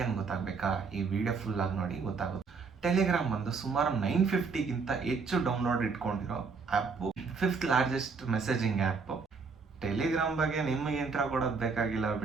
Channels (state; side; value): quieter; left; 4.9 dB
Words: ಅಂತ ಗೊತ್ತಾಗಬೇಕಾ? ಈ ವಿಡಿಯೋ ಫುಲ್ ಆಗಿ ನೋಡಿ ಗೊತ್ತಾಗುತ್ತೆ. ಟೆಲಿಗ್ರಾಮ್ ಬಂದು ಸುಮಾರು 950ಗಿಂತ ಹೆಚ್ಚು ಡೌನ್ಲೋಡ್ ಇಟ್ಕೊಂಡಿರೋ app, 5th largest messaging app. Telegram ಬಗ್ಗೆ ನಿಮಗೆ ಇಂಟ್ರಾ ಕೊಡೋದು ಬೇಕಾಗಿಲ್ಲ